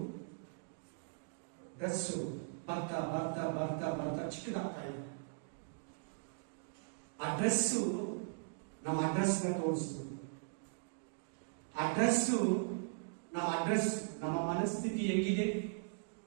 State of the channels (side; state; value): left; silent; digital silence